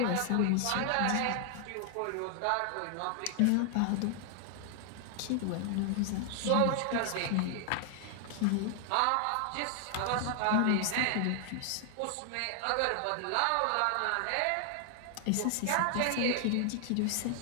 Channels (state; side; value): different; both; correlation 0.00